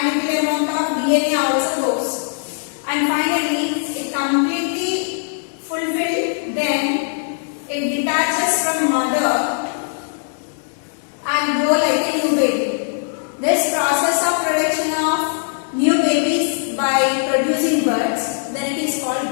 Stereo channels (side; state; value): right; silent; 66 dB below the other